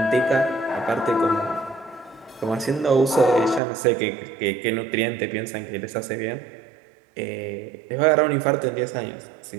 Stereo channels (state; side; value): drops out; left; at 3.6 s